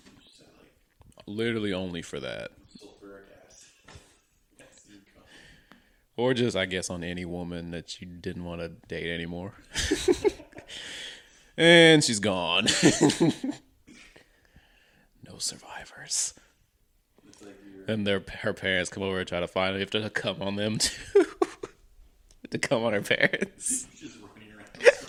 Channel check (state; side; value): identical; both; correlation 1.00